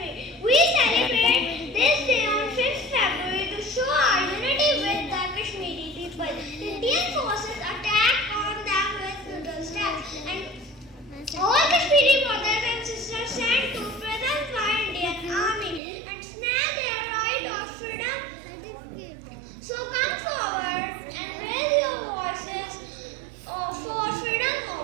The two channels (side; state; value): left; drops out; at 15.8 s